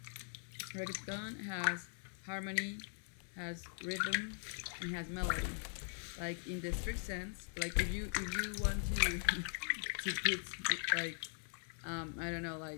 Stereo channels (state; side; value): silent; right; 50 dB below the other